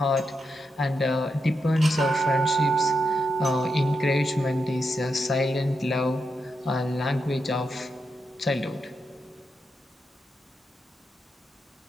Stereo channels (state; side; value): normal; both; correlation 0.85